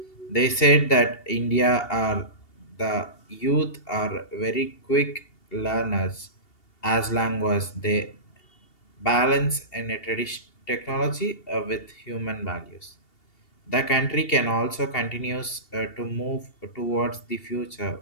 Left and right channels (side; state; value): right; late; 2.8 ms